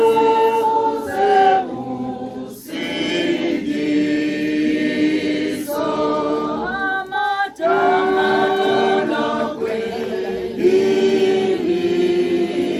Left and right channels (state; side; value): identical; both; correlation 1.00